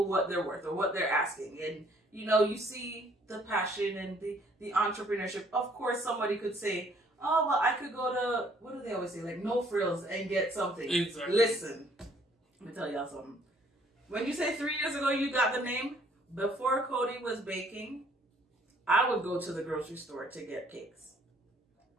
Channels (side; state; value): both; normal; correlation 0.62